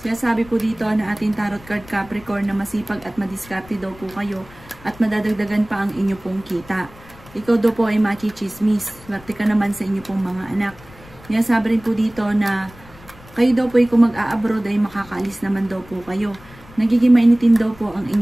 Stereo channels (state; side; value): noise; left; rumble, 22 dB below the sound